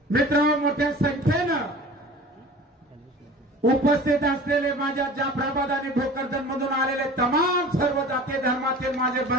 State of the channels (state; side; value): normal; both; correlation 0.41